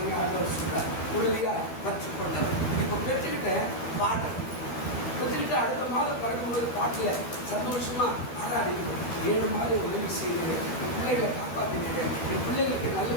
ஆண்டவர் சொல்றார், உறுதியா பற்றி கொண்டவர். இப்போ பெற்றுக்கிட்ட பாடம் வச்சுக்கிட்டு அடுத்த மாதம் பிறக்கும்போது பாட்டில் சந்தோஷமா ஆராடிக்கணும். 7 மாதம் உதவி செய்கிறேன், என் பிள்ளைகளை காப்பாற்றினேன், என் பிள்ளைகளுக்கு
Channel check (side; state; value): right; late; 12 ms